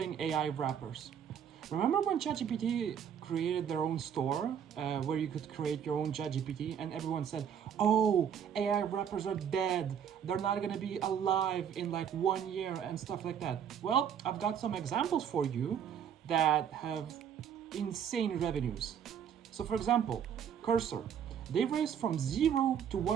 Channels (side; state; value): left; quieter; 8.4 dB